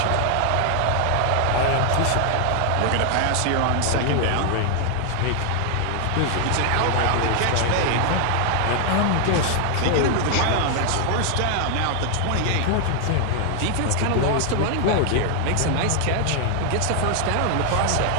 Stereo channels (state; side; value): different; both; correlation 0.00